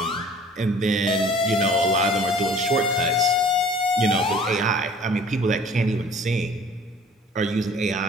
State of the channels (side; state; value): both; normal; correlation 0.50